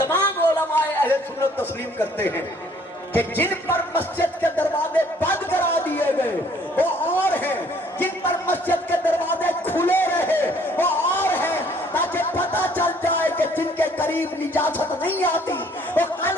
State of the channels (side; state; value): both; normal; correlation 0.60